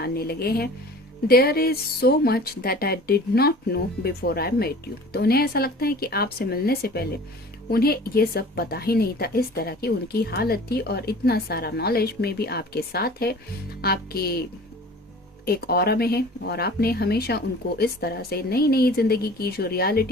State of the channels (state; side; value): normal; both; correlation 0.44